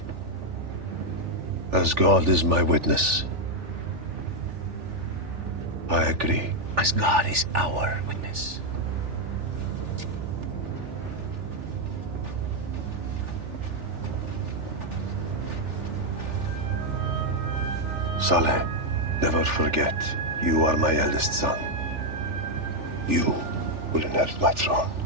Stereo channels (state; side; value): late; left; 3.4 ms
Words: As God is my witness, I agree. As God is our witness. Saleh, never forget, you are my eldest son. You will inherit my throne.